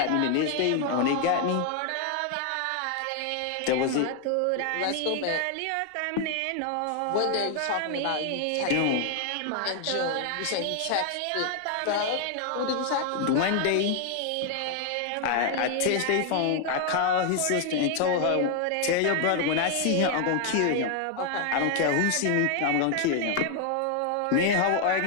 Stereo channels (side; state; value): both; different; correlation 0.00